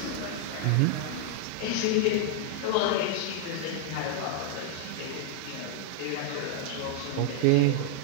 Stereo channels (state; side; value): different; both; correlation -0.01